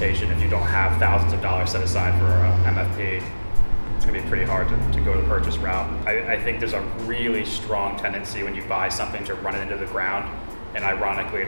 If you don't have thousands of dollars set aside for a MFP, it's going to be pretty hard to go the purchase route. I think there's a really strong tendency when you buy something to run it into the ground, and ironically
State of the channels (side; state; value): both; inverted; correlation -1.00